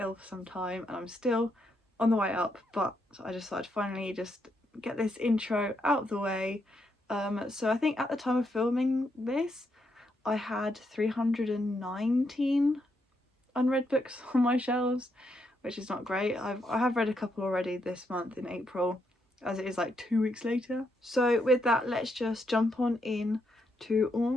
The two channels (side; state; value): both; normal; correlation 0.79